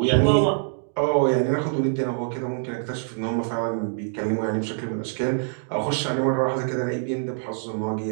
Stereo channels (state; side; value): silent; left; digital silence